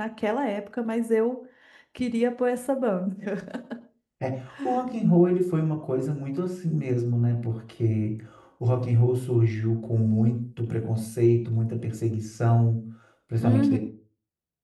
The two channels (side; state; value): both; identical; correlation 1.00